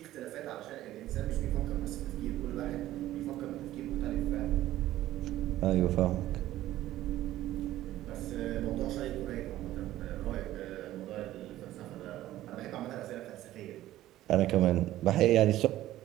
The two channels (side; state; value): left; quieter; 14.5 dB